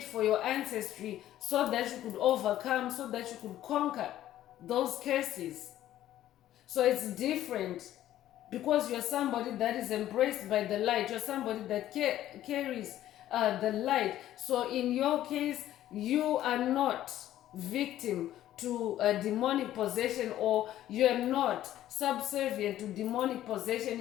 for your ancestry, so that you could overcome, so that you could conquer those curses. So it's different because you're somebody that is embraced by the light. You're somebody that carries the light. So in your case, you are not victim to a demonic possession, or you're not subservient to demonic possession.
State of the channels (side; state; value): right; quieter; 13.0 dB